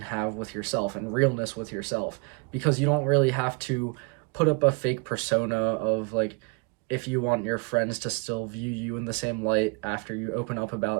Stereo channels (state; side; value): quieter; left; 32.6 dB